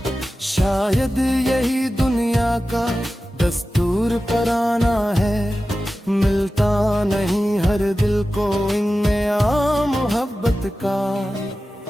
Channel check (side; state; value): both; normal; correlation 0.94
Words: शायद यही दुनिया का दस्तूर पराना है, मिलता नहीं हर दिल को इनमें आ मोहब्बत का।